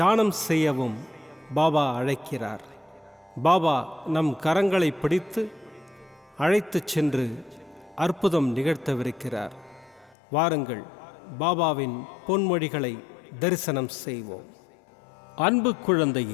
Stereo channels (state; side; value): drops out; right; at 10.2 s